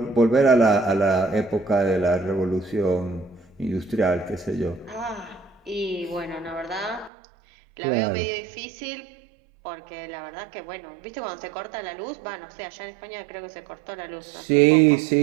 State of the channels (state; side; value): drops out; left; at 7.1 s